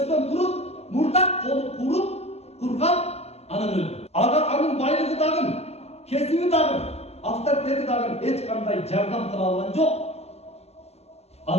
durup, murdak kolu kurup, kurgan, anan öldü. Anın baylığı dağın, kesimi dağın, avtoritet dağın, hiç kanday jardam kıla algan yok.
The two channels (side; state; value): right; late; 0.30 ms